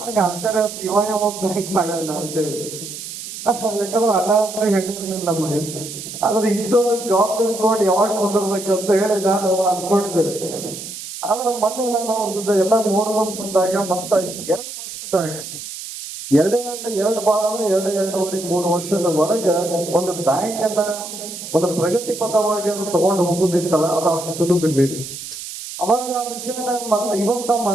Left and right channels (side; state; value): right; noise; hiss, 10 dB below the sound